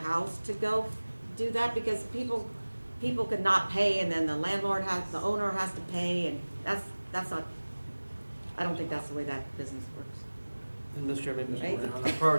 to go do that, because people could not pay, and then the owner has to pay, and that's not, I don't think that's the way that business works. And Mr. Chairman, Mr. Right. Brown, the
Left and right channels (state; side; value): inverted; both; correlation -1.00